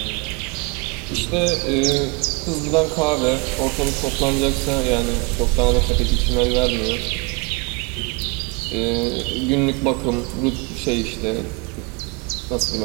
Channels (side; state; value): left; quieter; 29.7 dB